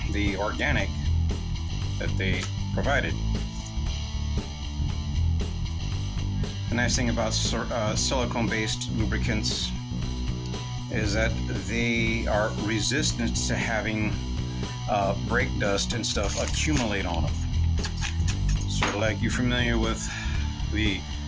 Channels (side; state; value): both; identical; correlation 1.00